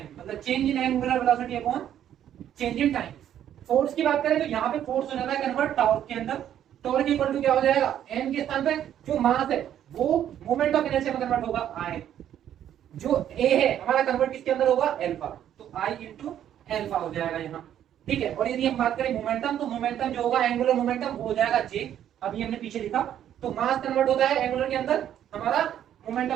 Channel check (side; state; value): left; quieter; 10.5 dB